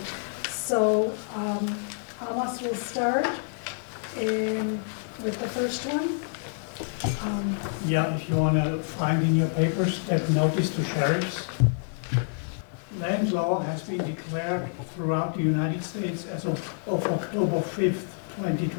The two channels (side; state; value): right; silent; 57 dB below the other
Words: So Amos will start with the first one. Yeah, if you want to find in your papers that notice to sheriffs. Land law has been declared throughout the United States as of October 5th,